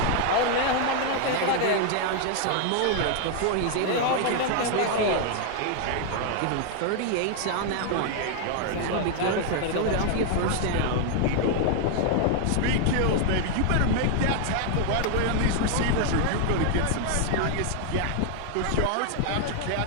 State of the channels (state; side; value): different; both; correlation 0.00